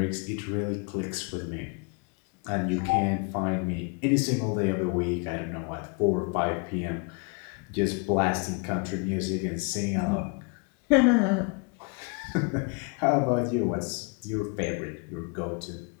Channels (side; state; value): right; quieter; 34.1 dB